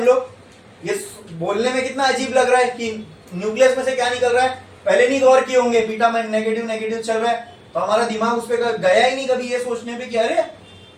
लोग? ये बोलने में कितना अजीब लग रहा है कि न्यूक्लियस में से क्या निकल रहा है, पहले नहीं गौर किए होंगे, बीटा में नेगेटिव नेगेटिव चल रहा है, तो हमारा दिमाग उस पर गया ही नहीं कभी ये सोचने पे कि अरे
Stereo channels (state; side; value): identical; both; correlation 1.00